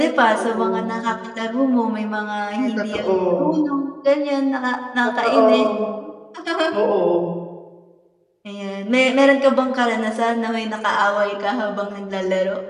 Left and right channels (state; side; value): identical; both; correlation 1.00